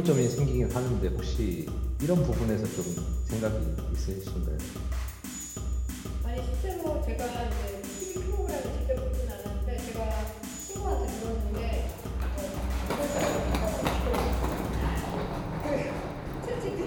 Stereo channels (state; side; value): identical; both; correlation 1.00